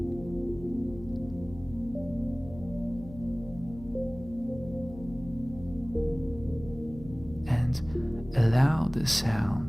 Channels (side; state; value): left; noise; hum, 16 dB below the sound